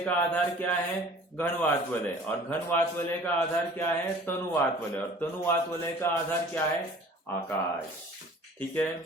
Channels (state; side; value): normal; both; correlation 0.48